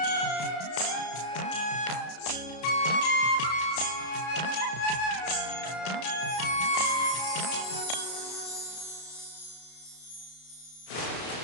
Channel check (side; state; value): right; late; 33 ms